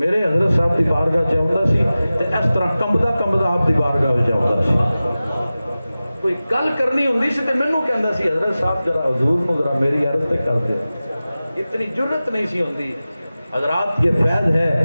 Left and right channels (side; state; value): both; inverted; correlation -0.96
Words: حضرت صاحب دی بارگاہ چ آوندا سی تے اس طرح کمبدا آپ دی بارگاہ وچ آوندا سی، کوئی گل کرنی ہوندی سی تے مینوں کہندا سی حضرت صاحب ذرا حضور نو ذرا میری عرض تے کر دے، اتنی جرت نہیں سی ہوندی۔ حضرات یہ فیض